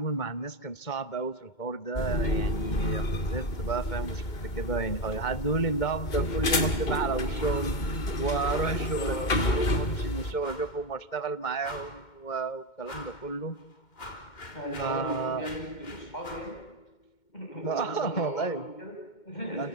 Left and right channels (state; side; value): late; right; 2.2 ms